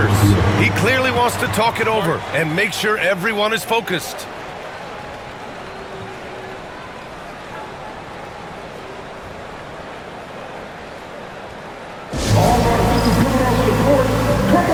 He clearly wants to talk it over and make sure everyone is focused. All right, this is coming off the court. Come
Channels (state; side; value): identical; both; correlation 1.00